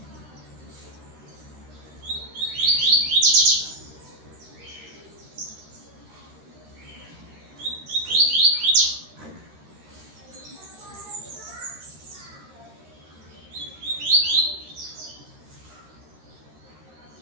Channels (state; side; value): late; left; 13 ms